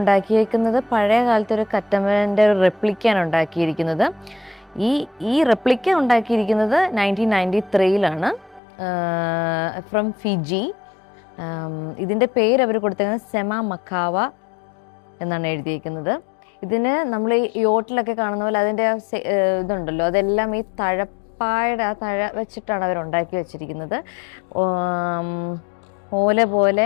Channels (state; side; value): drops out; right; at 8.6 s